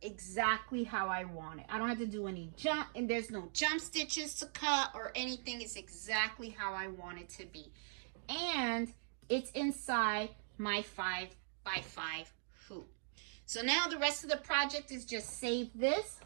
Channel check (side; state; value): left; silent; digital silence